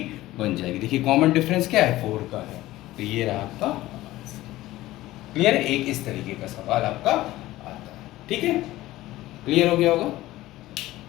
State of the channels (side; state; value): right; quieter; 16.6 dB